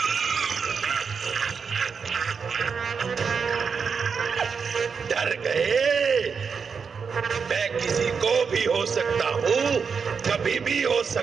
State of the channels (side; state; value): left; quieter; 5.9 dB